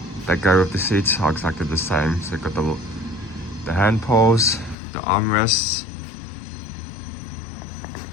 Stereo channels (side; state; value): right; drops out; at 4.8 s